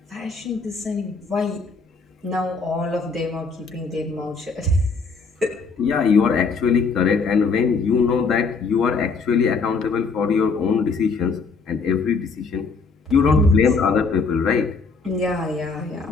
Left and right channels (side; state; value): right; quieter; 4.6 dB